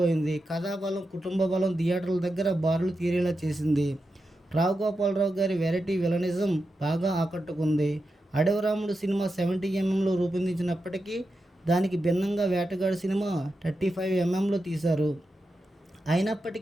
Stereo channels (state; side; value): normal; both; correlation 0.89